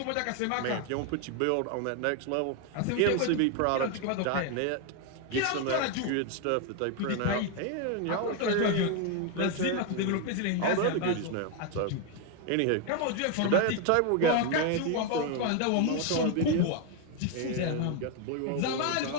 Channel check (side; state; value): both; different; correlation 0.01